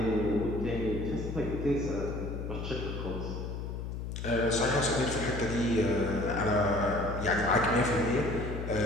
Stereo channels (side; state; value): left; noise; hum, 5 dB below the sound